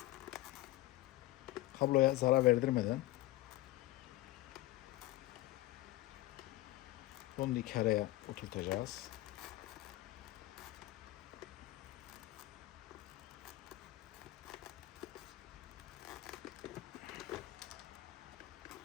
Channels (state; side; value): quieter; right; 17.3 dB